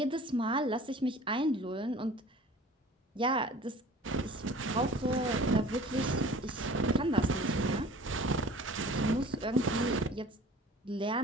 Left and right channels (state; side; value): normal; both; correlation 0.45